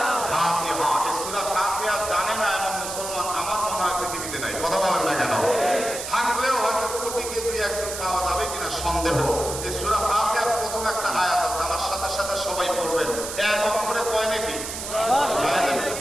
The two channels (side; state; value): right; noise; hiss, 7 dB below the sound